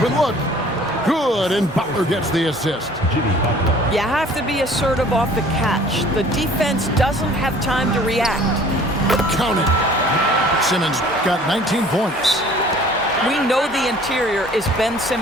look. Good, and Butler gets the assist. You have to be assertive off the catch. The defense doesn't have time to react. Count it. Simmons got 19 points. We know the interior is Ben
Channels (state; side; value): normal; both; correlation 0.51